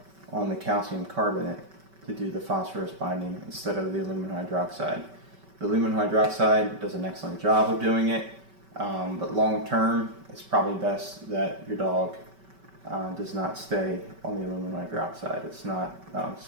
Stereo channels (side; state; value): left; late; 5.2 ms